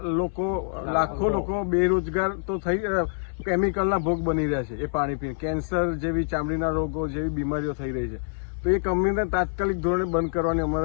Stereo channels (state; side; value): silent; right; 61 dB below the other